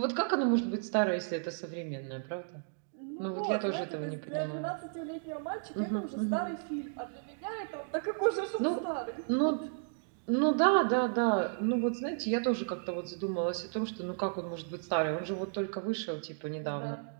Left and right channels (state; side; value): silent; left; digital silence